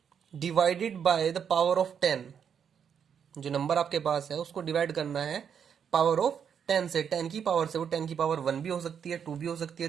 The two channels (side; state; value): left; quieter; 7.7 dB